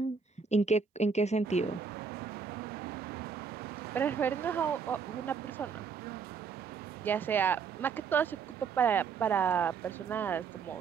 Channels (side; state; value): left; quieter; 5.8 dB